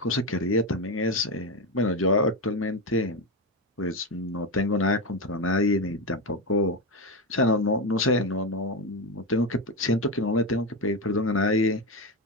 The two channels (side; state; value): both; normal; correlation 0.14